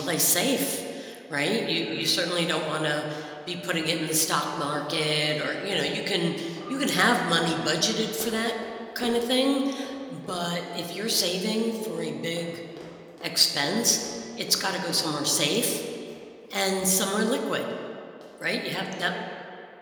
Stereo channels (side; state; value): both; identical; correlation 1.00